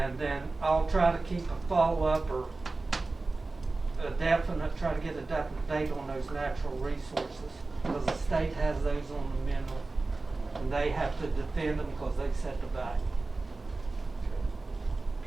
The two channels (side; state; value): left; quieter; 3.4 dB